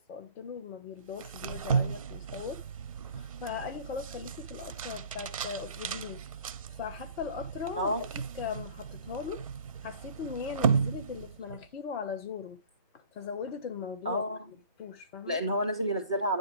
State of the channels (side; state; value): both; inverted; correlation -0.49